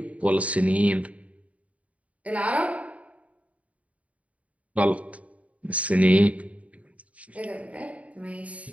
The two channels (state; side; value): late; left; 0.067 ms